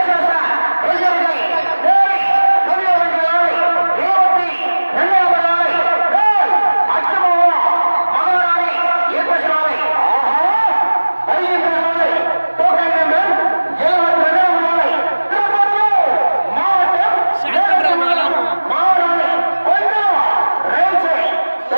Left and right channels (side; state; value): both; inverted; correlation -1.00